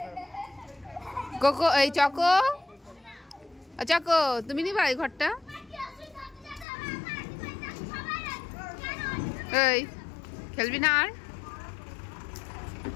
কোকো, এই চকো, চকো তুমি নিবা এই ঘরটা? এই খেলবি না আর?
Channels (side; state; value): right; drops out; at 6.7 s